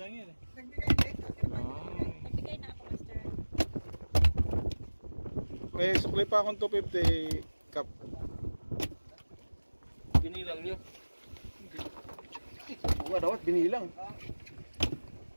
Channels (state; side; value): inverted; both; correlation -1.00